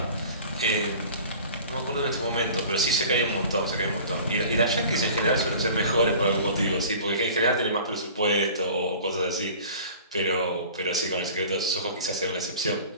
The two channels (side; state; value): both; inverted; correlation -0.43